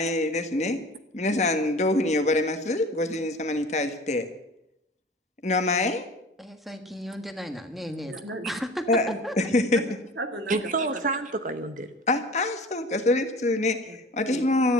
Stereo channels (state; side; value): normal; both; correlation 0.40